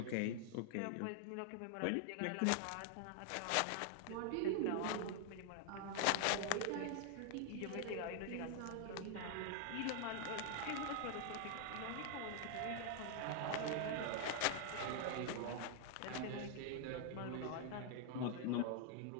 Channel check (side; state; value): both; different; correlation 0.00